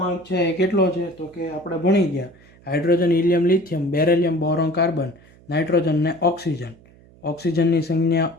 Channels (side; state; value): right; noise; hum, 26 dB below the sound